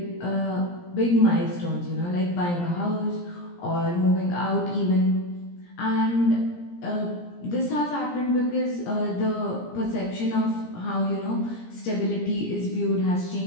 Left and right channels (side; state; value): right; late; 17 ms